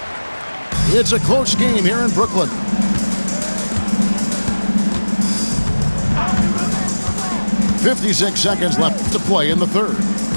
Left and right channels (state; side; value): inverted; both; correlation -1.00